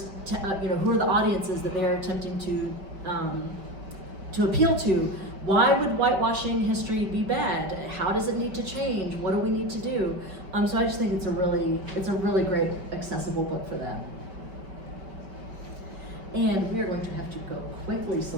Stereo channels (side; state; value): left; late; 5.2 ms